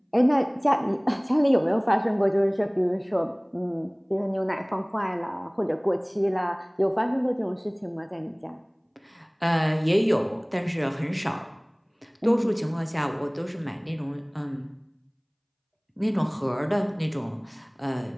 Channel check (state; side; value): identical; both; correlation 1.00